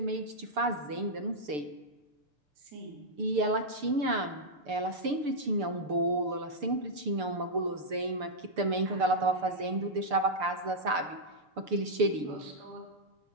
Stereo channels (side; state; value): left; late; 6.8 ms